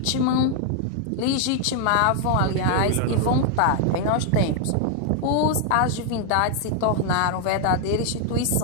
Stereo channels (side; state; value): both; different; correlation 0.00